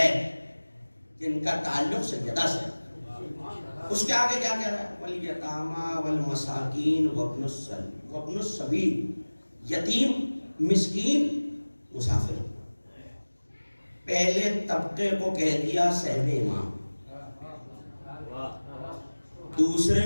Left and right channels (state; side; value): inverted; both; correlation -1.00